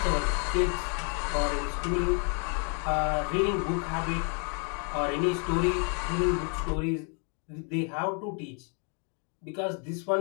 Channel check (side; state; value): right; quieter; 39.2 dB